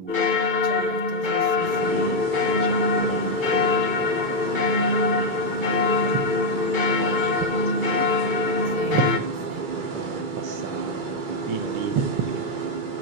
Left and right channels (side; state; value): left; late; 2.3 ms